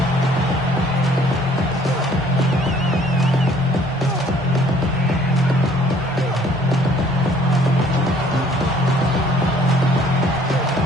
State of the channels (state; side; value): normal; both; correlation 0.59